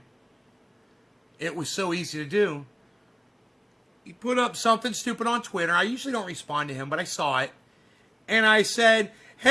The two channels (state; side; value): identical; both; correlation 1.00